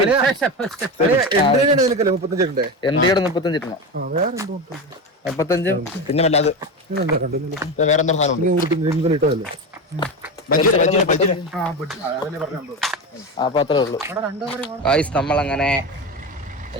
എന്റെ 35 35 പിന്നെ വല്ലാതെ വേറെ എന്താ സാധനം ഇട്ടതല്ലേ അപ്പൊ അത്രേ ഉള്ളൂ ഗായ്സ്. നമ്മളങ്ങനെ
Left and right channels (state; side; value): normal; both; correlation 0.21